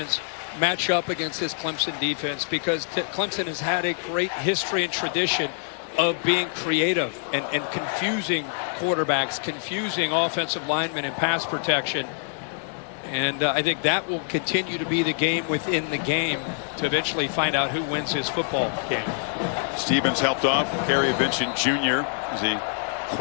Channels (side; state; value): right; silent; 61 dB below the other